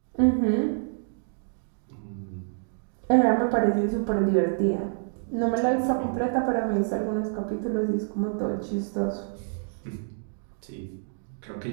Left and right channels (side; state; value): left; silent; digital silence